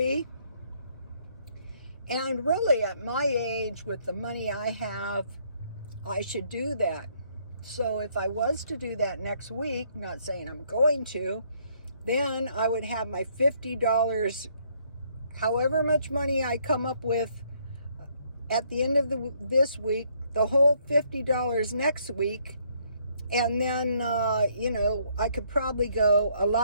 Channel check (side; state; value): both; inverted; correlation -0.68